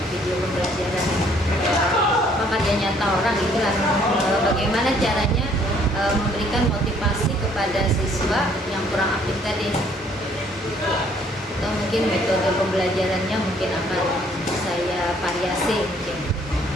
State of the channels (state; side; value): normal; both; correlation 0.62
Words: video pembelajaran karya nyata orang, itulah bagaimana caranya memberikan motivasi kepada siswa yang kurang aktif tadi, atau mungkin metode pembelajarannya mungkin akan saya variasi mungkin.